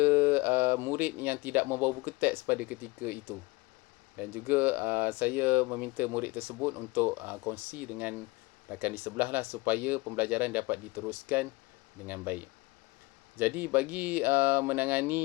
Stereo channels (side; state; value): right; quieter; 23.5 dB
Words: murid yang tidak membawa buku teks pada ketika itu. Dan juga saya meminta murid tersebut untuk kongsi dengan rakan di sebelah lah, supaya pembelajaran dapat diteruskan dengan baik. Jadi bagi